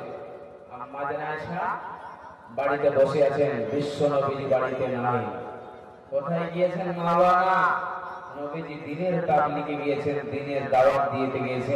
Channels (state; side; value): identical; both; correlation 1.00